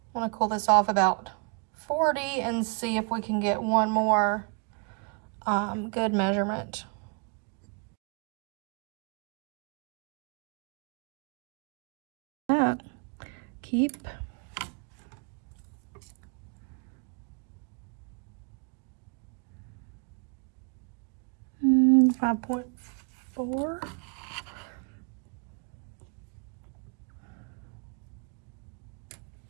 want to cool this off about 40 and see if we can get one more good measurement. Keep. 5.4.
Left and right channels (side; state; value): left; quieter; 36.9 dB